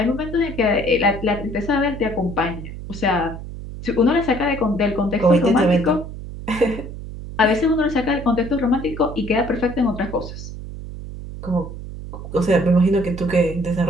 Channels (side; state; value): right; noise; hum, 10 dB below the sound